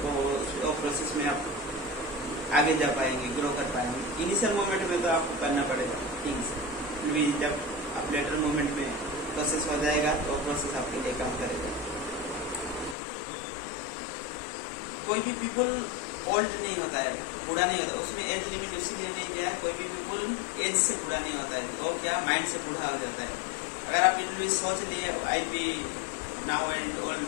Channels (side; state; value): right; drops out; at 13.0 s